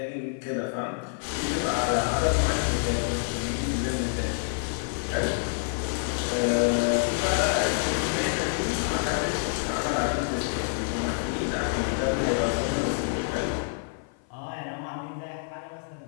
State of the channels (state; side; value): silent; right; 56 dB below the other